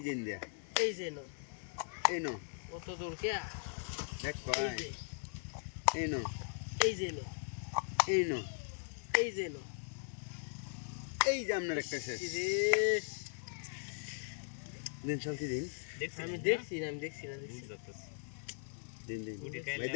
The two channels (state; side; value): silent; right; 52 dB below the other